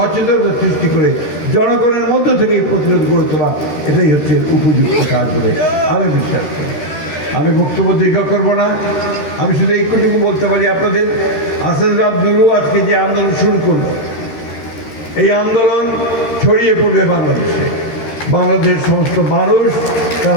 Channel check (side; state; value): right; late; 13 ms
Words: সৃষ্টি করে জনগণের মধ্য থেকে এই প্রতিরোধ গড়ে তোলা, এটাই হচ্ছে উপযুক্ত কাজ বলে আমি বিশ্বাস করি। আমি বক্তব্য দীর্ঘ করব না। আমি শুধু এইটুকু বলতে পারি আপনাদের, আসাদুর আব্দুলও আজকে যে আন্দোলন শুরু করলো, এই আন্দোলন ছড়িয়ে পড়বে বাংলাদেশে। বাংলাদেশের সমস্ত মানুষ